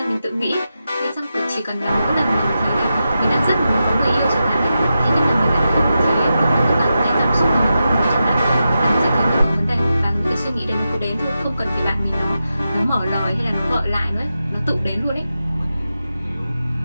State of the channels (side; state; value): both; inverted; correlation -0.89